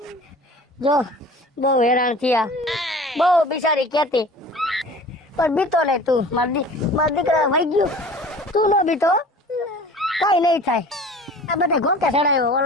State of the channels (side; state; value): both; normal; correlation 0.43